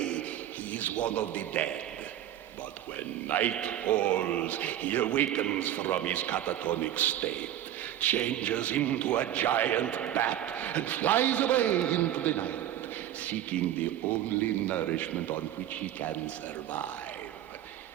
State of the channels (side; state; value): left; quieter; 11.9 dB